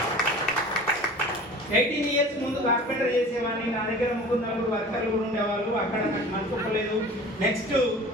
18 years ముందు కార్పెంటర్ చేసేవాడిని. నా దగ్గర 3-4 వర్కర్లు కూడా ఉండేవాళ్ళు. అక్కడ నాకు మనసులేదు. నెక్స్ట్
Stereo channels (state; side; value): normal; both; correlation 0.41